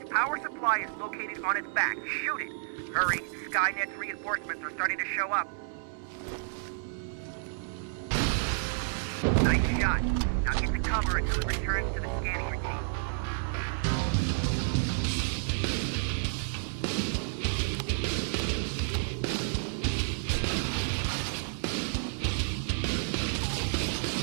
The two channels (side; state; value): left; silent; 57 dB below the other